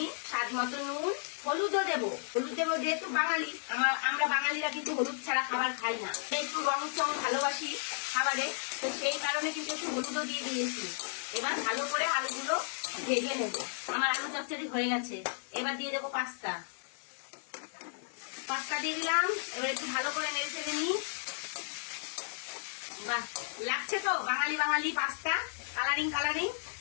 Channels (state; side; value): silent; right; digital silence